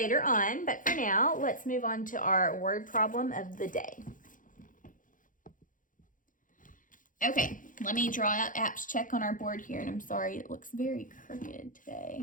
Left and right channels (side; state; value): right; late; 0.38 ms